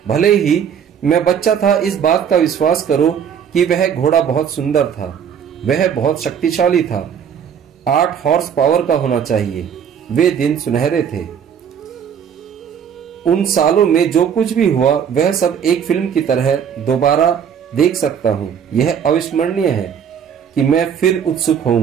भले ही मैं बच्चा था, इस बात का विश्वास करो कि वह घोड़ा बहुत सुंदर था। वह बहुत शक्तिशाली था। 8 हॉर्स पावर का होना चाहिए। वे दिन सुनहरे थे। उन सालों में जो कुछ भी हुआ वह सब एक फिल्म की तरह दोबारा देख सकता हूँ। यह अविस्मरणीय है कि मैं फिर उत्सुक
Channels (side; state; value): left; quieter; 8.0 dB